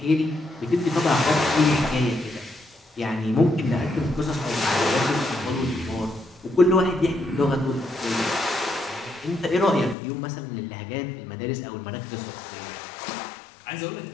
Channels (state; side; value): drops out; right; at 10.0 s